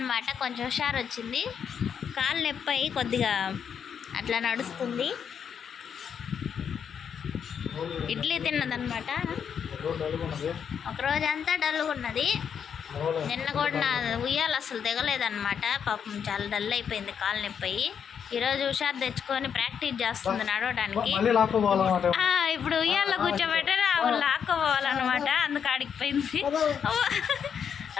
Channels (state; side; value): quieter; right; 7.6 dB